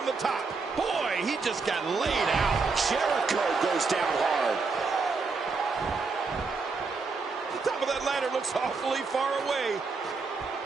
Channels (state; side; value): quieter; left; 4.4 dB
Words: the top. Boy, he just got laid out. Jericho goes down hard. The top of that ladder looks awfully far away.